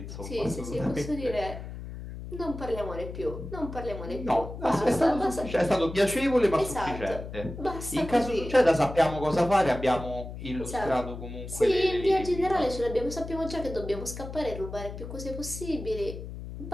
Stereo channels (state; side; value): noise; left; hum, 10 dB below the sound